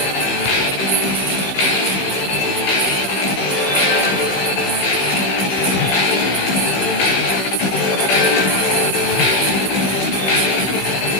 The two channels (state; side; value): late; right; 16 ms